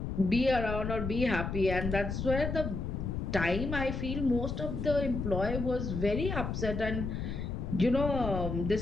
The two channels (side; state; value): left; noise; rumble, 3 dB below the sound